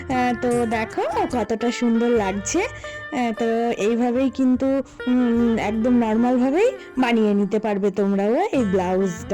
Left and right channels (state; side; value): identical; both; correlation 1.00